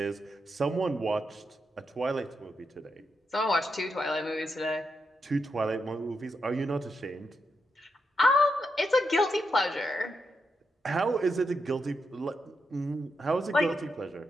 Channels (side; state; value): both; normal; correlation 0.84